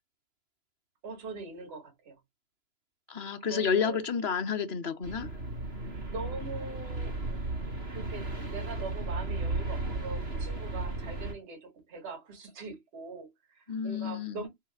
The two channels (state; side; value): late; left; 3.0 ms